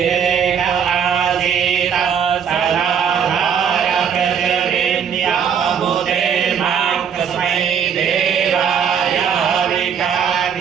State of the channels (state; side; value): quieter; left; 7.5 dB